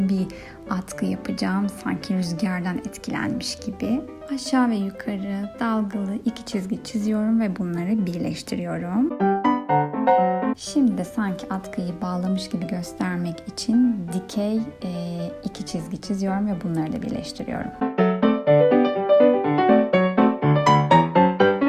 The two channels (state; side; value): identical; both; correlation 1.00